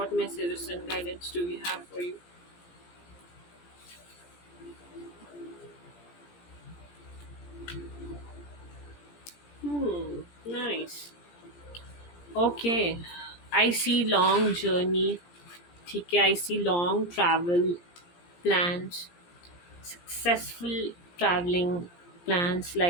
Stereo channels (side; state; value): right; late; 17 ms